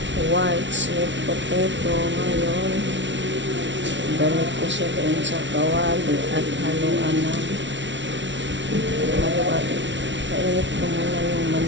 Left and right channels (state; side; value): late; left; 0.54 ms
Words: white sweet potato. Ngayon, balik ko siya doon sa kawali at haluan na. Kainit ko muna yung